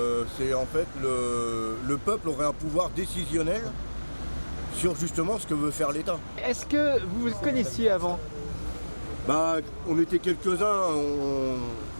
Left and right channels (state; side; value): inverted; both; correlation -1.00